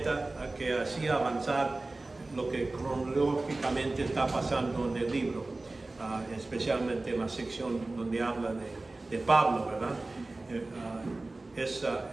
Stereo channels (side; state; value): left; quieter; 3.1 dB